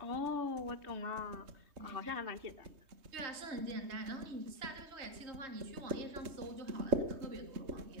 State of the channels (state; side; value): late; left; 3.2 ms